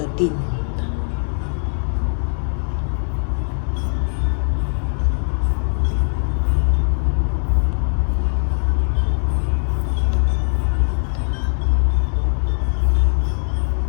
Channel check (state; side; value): silent; right; 66 dB below the other